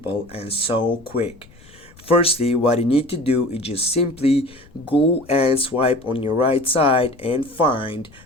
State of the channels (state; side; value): noise; left; rumble, 25 dB below the sound